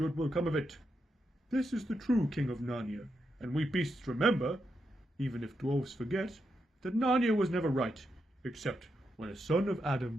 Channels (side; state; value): both; normal; correlation 0.84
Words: will come of it. This is the true king of Narnia, and we beasts remember, even if dwarves forget, that Narnia was never right, except when a son of